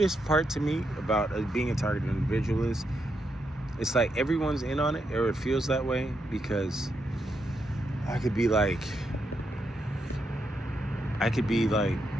part to me about being a targeted individual is it's like everyone's in on it, or it feels that way, because I could be like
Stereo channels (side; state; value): both; normal; correlation 0.81